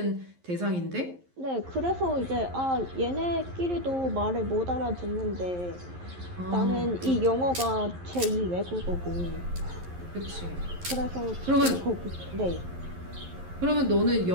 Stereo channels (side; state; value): left; late; 11 ms